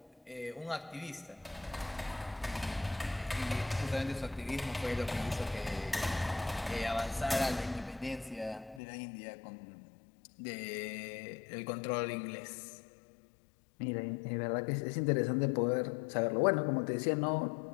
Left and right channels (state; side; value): drops out; right; at 8.8 s